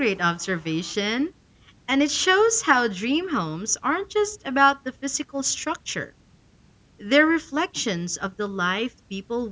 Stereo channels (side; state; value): both; identical; correlation 1.00